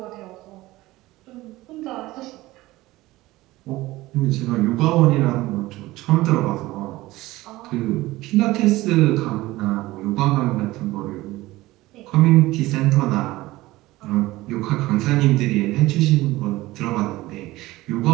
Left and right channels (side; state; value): left; quieter; 18.4 dB